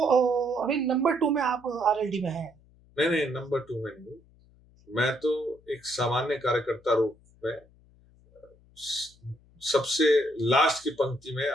अभी नंबर 2 में आप आरएलडी में हैं। नहीं, नंबर 2 में नहीं। मैं तो एक सामान्य कार्यकर्ता रूप में सबसे लास्ट की पंक्ति में,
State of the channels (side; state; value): left; noise; hum, 29 dB below the sound